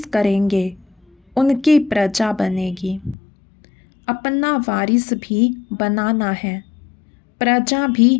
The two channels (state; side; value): drops out; right; at 3.2 s